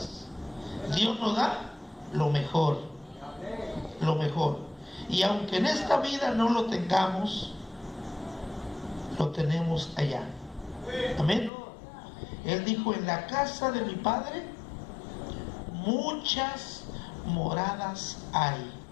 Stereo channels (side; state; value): right; drops out; at 11.5 s